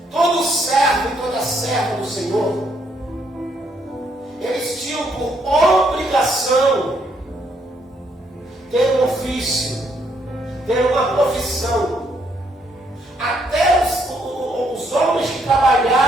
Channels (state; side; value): normal; both; correlation 0.72